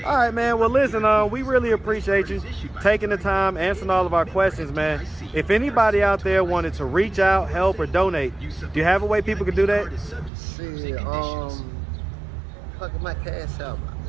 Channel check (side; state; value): left; drops out; at 10.3 s